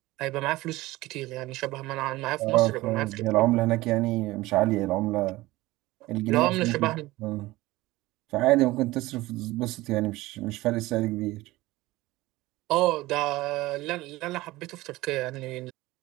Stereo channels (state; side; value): quieter; left; 18.8 dB